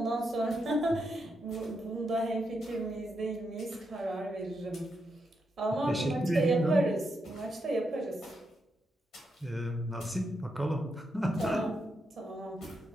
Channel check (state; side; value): normal; both; correlation 0.82